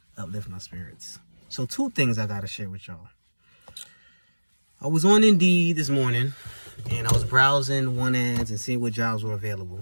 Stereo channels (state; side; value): inverted; both; correlation -1.00